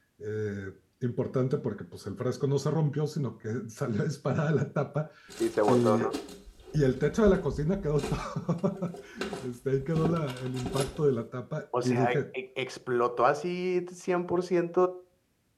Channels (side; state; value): both; identical; correlation 1.00